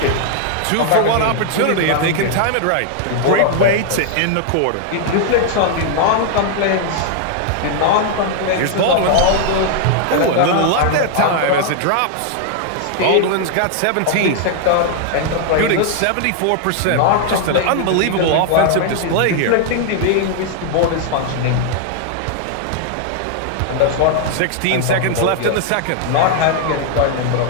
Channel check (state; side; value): different; both; correlation 0.00